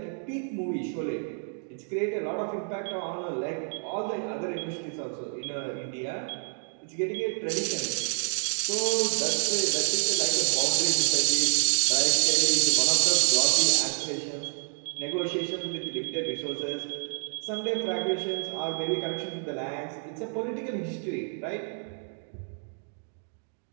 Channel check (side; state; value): left; silent; 59 dB below the other